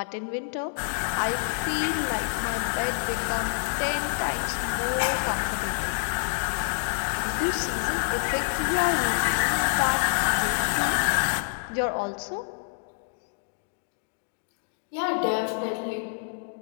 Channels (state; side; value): silent; right; digital silence